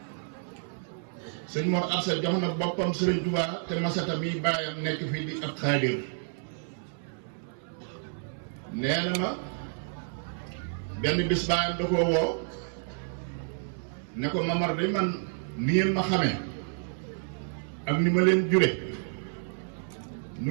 sëñ Mor Absa jox na boppam Sëriñ Tuubaa te Masata mi baayam nekk fii di ab xaadir nee na ma benn bis baayam da koo woo ne ko Mamar de man ni ngeen ma xamee ak ni ma leen jure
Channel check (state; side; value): silent; left; 58 dB below the other